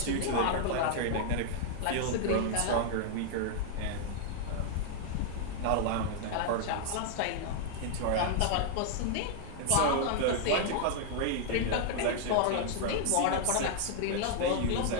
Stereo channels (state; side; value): different; both; correlation 0.00